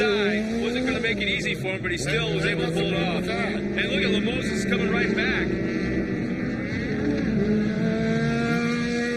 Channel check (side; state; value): both; identical; correlation 1.00